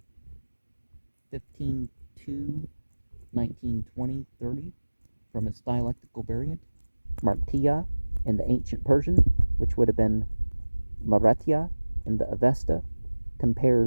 15:2, 19, 20, 30, from its dialectical variant, Martiya in the ancient Persian, which would have been Maretya in the Avesta.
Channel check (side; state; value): both; inverted; correlation -1.00